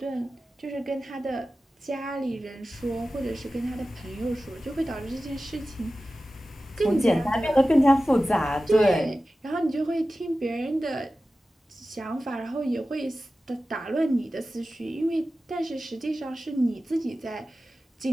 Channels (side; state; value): both; normal; correlation 0.95